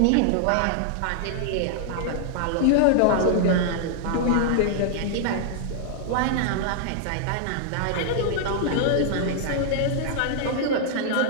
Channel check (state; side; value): different; both; correlation -0.01